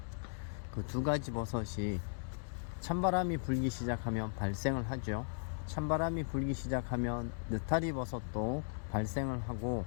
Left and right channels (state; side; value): silent; right; digital silence